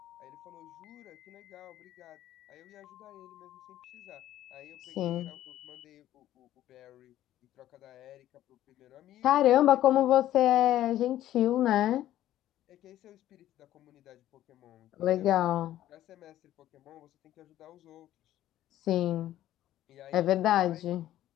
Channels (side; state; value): right; quieter; 13.2 dB